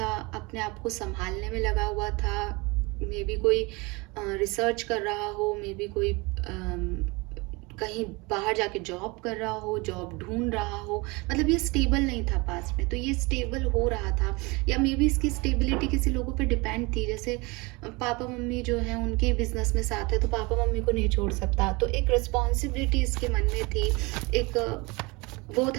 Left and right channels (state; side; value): quieter; left; 25.9 dB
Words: अपने आप को संभालने में लगा हुआ था। मे बी कोई रिसर्च कर रहा हो, मे बी कोई कहीं बाहर जाके जॉब कर रहा हो, जॉब ढूंढ रहा हो, मतलब ये स्टेबल नहीं था पास में, तो ये स्टेबल हो रहा था। या मे बी इसकी स्टेबिलिटी किसी लोगों पे डिपेंड थी, जैसे पापा मम्मी जो हैं उनके बिजनेस में साथ है तो पापा मम्मी को नहीं छोड़ सकता, तो एक रिस्पॉन्सिबिलिटी इसके मन में थी, एक वो